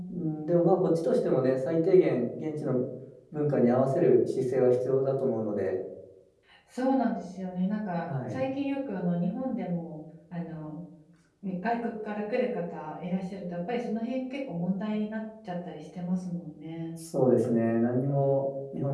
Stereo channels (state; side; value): identical; both; correlation 1.00